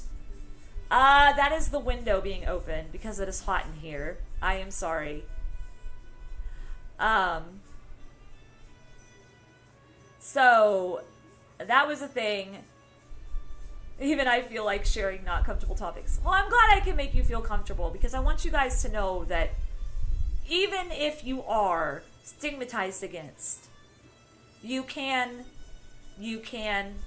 That is the window being opened because it is hot in here. I am sorry. So that was a thing. Even I feel like sharing not comfortable topics. Well, I'm glad I can make you feel comfortable because I want you guys to know that even if you are stigmatized against, you can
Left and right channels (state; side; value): identical; both; correlation 1.00